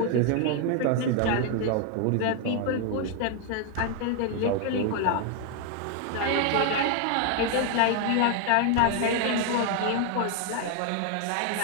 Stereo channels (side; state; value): both; different; correlation 0.00